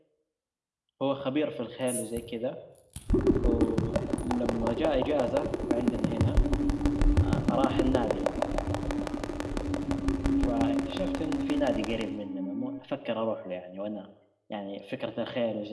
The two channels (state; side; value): identical; both; correlation 1.00